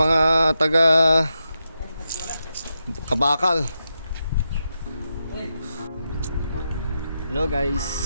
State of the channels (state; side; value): inverted; both; correlation -0.87